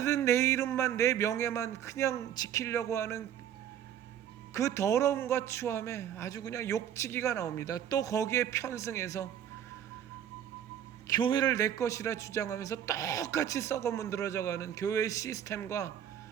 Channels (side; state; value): left; quieter; 10.0 dB